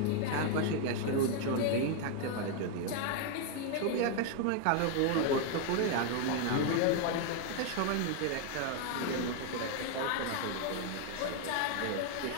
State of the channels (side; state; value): both; different; correlation 0.00